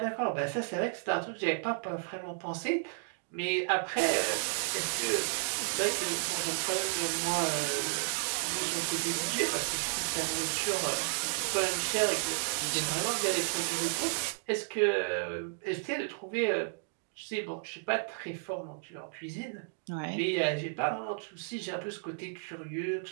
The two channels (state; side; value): silent; left; digital silence